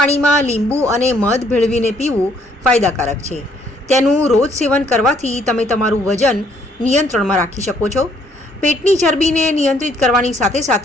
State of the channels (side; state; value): both; normal; correlation 0.66